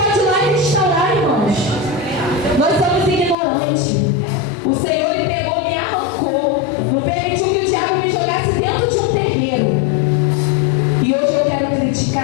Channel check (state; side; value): drops out; right; at 3.4 s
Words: ir lá e restaurar, irmãos. Nós somos ignorantes. O Senhor ele pegou, me arrancou. Não permitiu que o diabo me jogasse dentro de um terreiro. E hoje eu quero